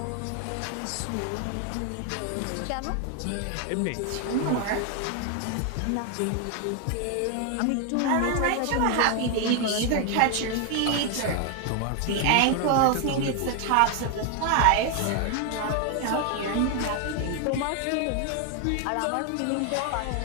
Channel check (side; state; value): both; different; correlation 0.00